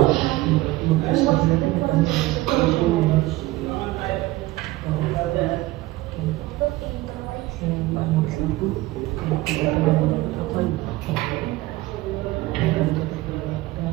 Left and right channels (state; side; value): quieter; left; 18.6 dB